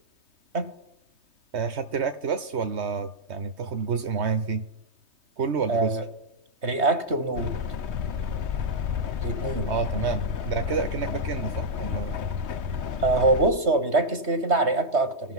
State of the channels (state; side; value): late; left; 3.2 ms